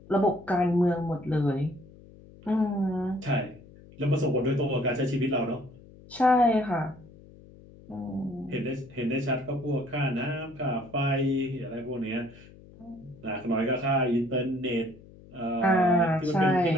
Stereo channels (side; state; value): left; noise; hum, 22 dB below the sound